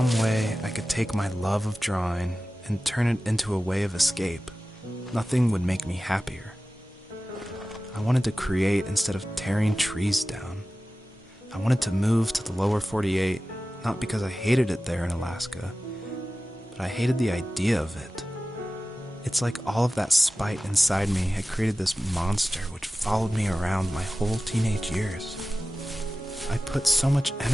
way I could take my love of drawing and turn it into a way of escape, nothing would make me happier. I wanted to create instead of tearing trees down. I wanted to move to the lower 48, not because I hated it there in Alaska, but I hated the idea of it. It's like all of that spite inside me had created this monster which followed me around my whole teenage years. I put so much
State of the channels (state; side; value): normal; both; correlation 0.95